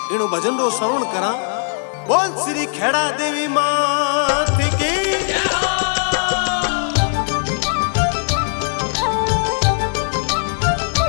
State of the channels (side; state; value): right; silent; digital silence